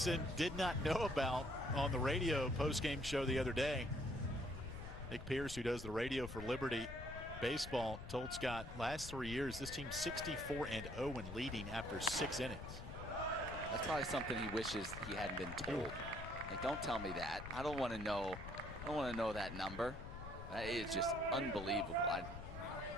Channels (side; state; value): left; noise; rumble, 10 dB below the sound